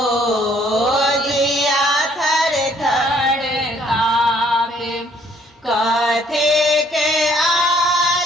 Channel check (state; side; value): normal; both; correlation 0.63